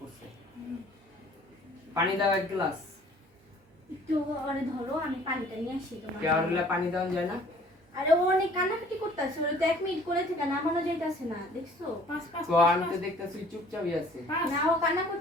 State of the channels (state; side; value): normal; both; correlation 0.54